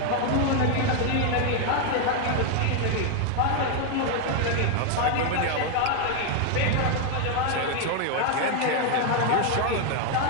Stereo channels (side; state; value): both; different; correlation 0.01